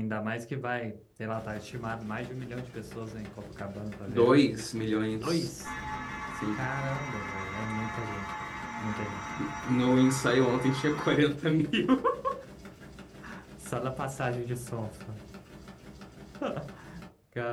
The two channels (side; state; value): both; identical; correlation 1.00